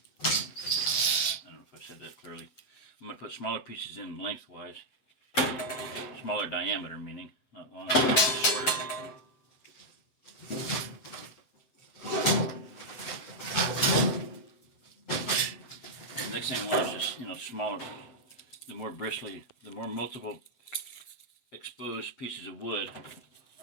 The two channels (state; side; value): late; right; 7.9 ms